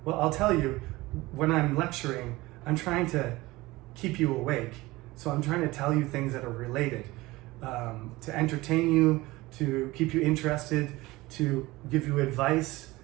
Well, I'll tell you, when I'm lecturing, I'm trying to keep you awake. So I'm trying to tell you things that are related, to entertain you, to keep you interested, to give you advice,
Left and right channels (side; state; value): left; quieter; 20.1 dB